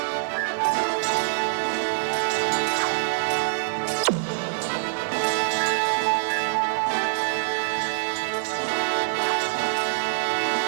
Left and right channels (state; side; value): silent; left; digital silence